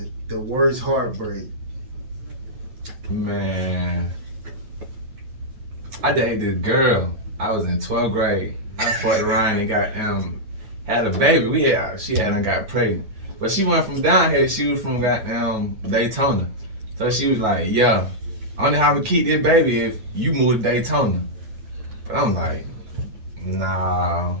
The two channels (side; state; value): left; late; 8.7 ms